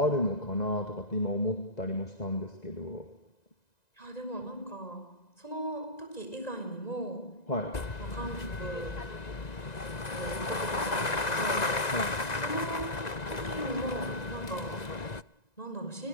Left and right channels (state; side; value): late; right; 1.9 ms